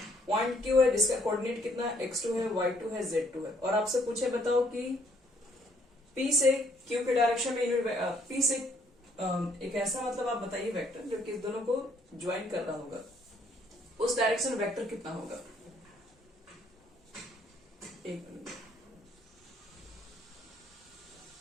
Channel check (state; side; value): normal; both; correlation 0.66